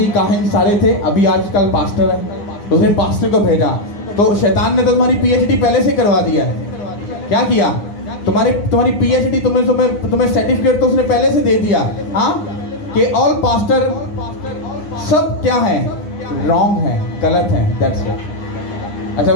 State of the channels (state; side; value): late; right; 9.8 ms